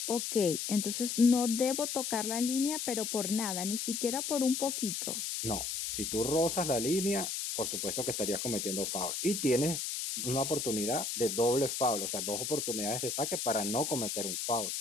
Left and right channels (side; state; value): left; noise; hiss, 3 dB below the sound